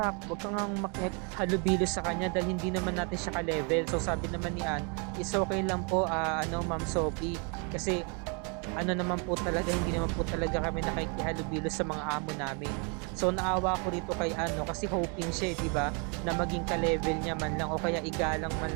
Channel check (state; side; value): quieter; left; 35.4 dB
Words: wag kang makihalubilo sa kanya dahil hindi naman natin siya ka-level. So sabi naman ni Ann, is okay lang po Ma'am Sophie, kasi naman po talaga, hindi naman po talaga kami nakikihalubilo sa mga amo namin. So naawa ko rito kay kasi hoping siya, di ba, na maging ka-level niya man lang o kaya igalang